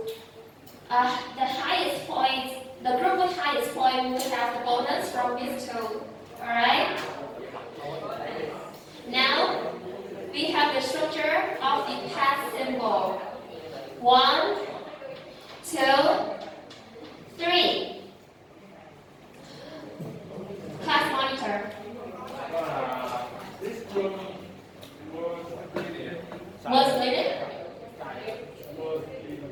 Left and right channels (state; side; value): identical; both; correlation 1.00